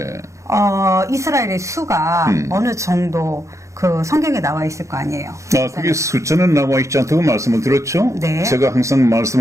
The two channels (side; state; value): left; late; 0.15 ms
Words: 이스라엘의 수가 어느 정도 그 성경에 나와 있을 거 아니에요. 그게 숫자는 나와 있지 않다고 말씀을 드렸죠. 네. 제가 항상